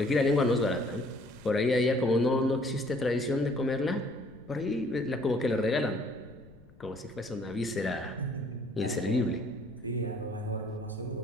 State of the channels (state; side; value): noise; left; rumble, 24 dB below the sound